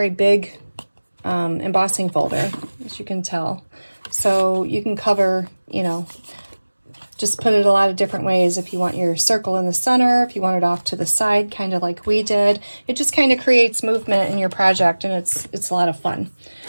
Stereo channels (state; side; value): inverted; both; correlation -1.00